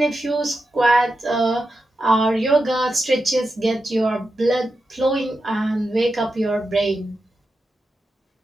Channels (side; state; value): both; normal; correlation 0.89